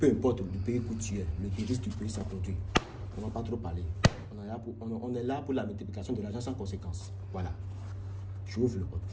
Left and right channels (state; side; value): identical; both; correlation 1.00